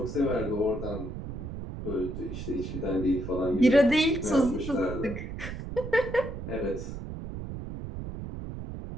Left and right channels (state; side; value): noise; right; rumble, 8 dB below the sound